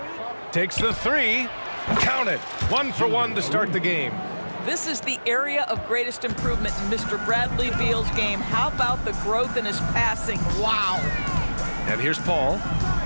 Takes the 3. Count it. 1 for 1 to start the game. This is the area of greatest improvement in Mr. Bradley Beal's game. How about the growth in his passing? Wow. And here's Paul.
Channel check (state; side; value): inverted; both; correlation -1.00